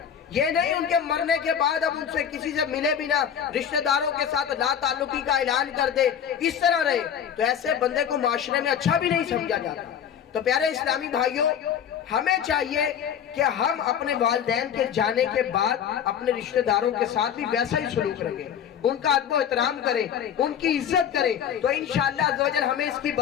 یہ نہیں ان کے مرنے کے بعد اب ان سے کسی سے ملے بھی نہ، رشتہ داروں کے ساتھ لا تعلقی کا اعلان کر دے، اس طرح رہے، تو ایسے بندے کو معاشرے میں اچھا بھی نہیں سمجھا جاتا۔ تو پیارے اسلامی بھائیوں، ہمیں چاہیے کہ ہم اپنے والدین کے جانے کے بعد اپنے رشتہ داروں کے ساتھ بھی ویسا ہی سلوک رکھیں، ان کا ادب و احترام کریں، ان کی عزت کریں، تو انشاءاللہ عز و جل ہمیں اس کی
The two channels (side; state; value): right; quieter; 8.6 dB